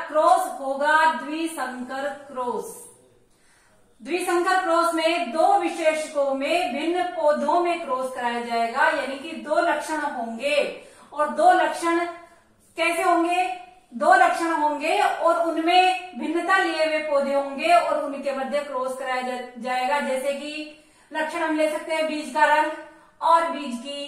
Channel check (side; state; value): both; identical; correlation 1.00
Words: क्रॉस होगा द्विसंकर क्रॉस। द्विसंकर क्रॉस में दो विशेषकों में भिन्न पौधों में क्रॉस कराया जाएगा, यानी कि दो लक्षण होंगे। और दो लक्षण कैसे होंगे? दो लक्षण होंगे और उनमें भिन्नता लिए हुए पौधे होंगे और उनके मध्य क्रॉस कराया जाएगा। जैसे कि लक्षण हम ले सकते हैं बीज का रंग और बीज की